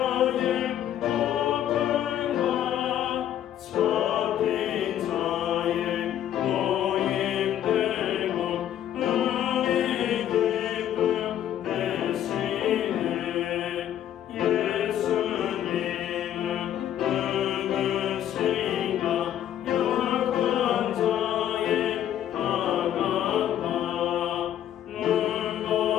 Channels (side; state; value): right; quieter; 10.9 dB